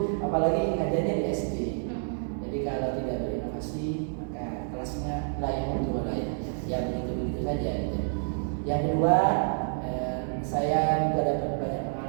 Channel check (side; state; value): left; silent; digital silence